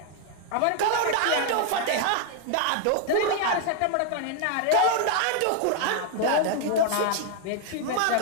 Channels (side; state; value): both; different; correlation 0.00